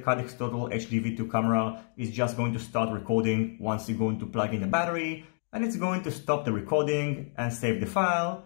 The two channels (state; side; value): silent; right; 59 dB below the other